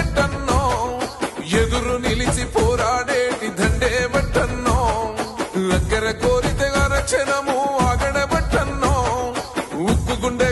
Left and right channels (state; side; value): identical; both; correlation 1.00